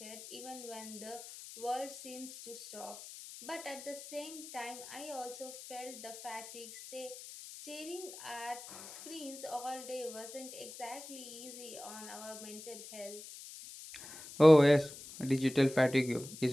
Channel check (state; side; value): noise; left; hiss, 13 dB below the sound